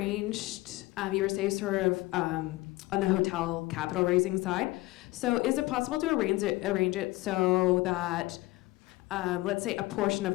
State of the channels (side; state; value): right; quieter; 19.8 dB